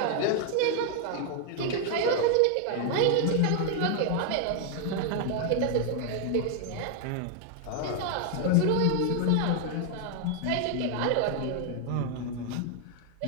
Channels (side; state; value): both; different; correlation 0.00